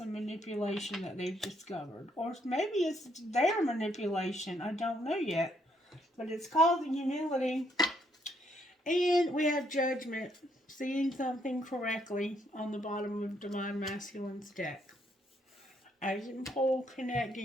manipulation that they've discovered. Or maybe it's their manipulation. I don't know yet. But it's called humility. And we have judgment. Seeing something correctly on the bottom of Divine Masculine's deck. I didn't pull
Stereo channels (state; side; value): normal; both; correlation 0.72